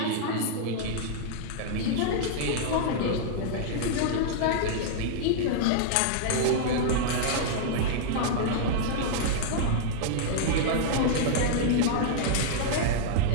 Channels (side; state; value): both; different; correlation -0.01